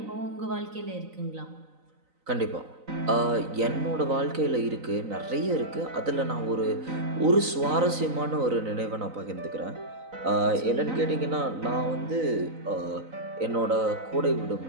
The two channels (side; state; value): left; late; 3.9 ms